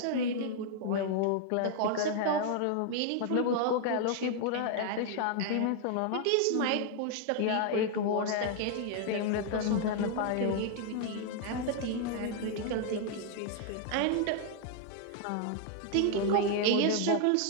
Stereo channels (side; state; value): both; different; correlation 0.00